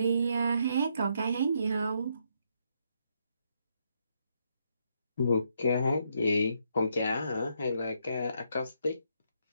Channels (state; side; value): inverted; both; correlation -0.75